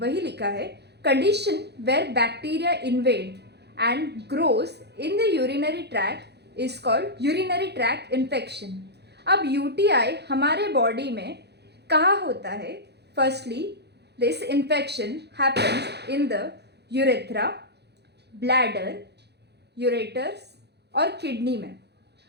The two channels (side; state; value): left; late; 0.48 ms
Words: लिखा है, condition where bacteria invade and grows in the urinary tract is called urinary tract infection. अब यूटीआई हमारे बॉडी में कहाँ होता है? Firstly, this infection happens in the urethra, bladder, ureters और किडनी में।